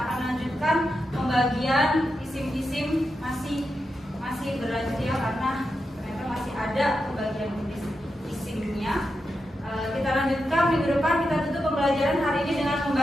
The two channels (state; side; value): normal; both; correlation 0.88